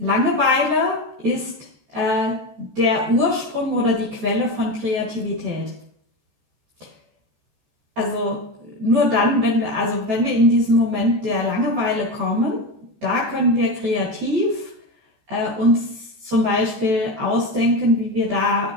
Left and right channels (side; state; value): left; late; 14 ms